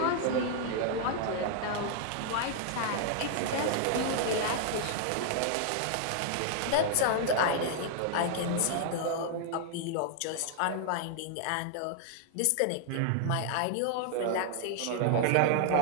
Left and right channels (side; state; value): both; different; correlation -0.01